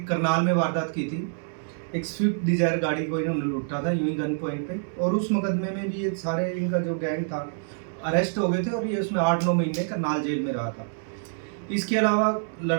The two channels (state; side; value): silent; left; 61 dB below the other